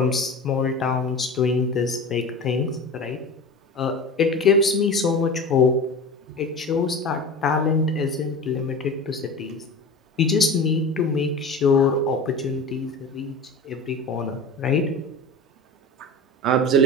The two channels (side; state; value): both; normal; correlation 0.34